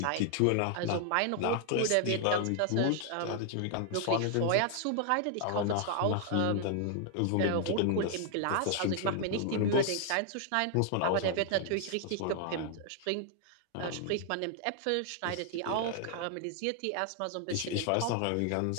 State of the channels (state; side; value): different; both; correlation 0.00